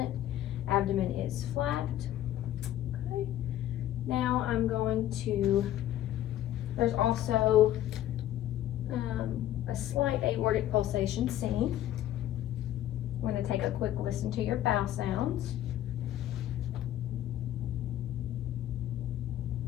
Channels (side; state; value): right; quieter; 12.7 dB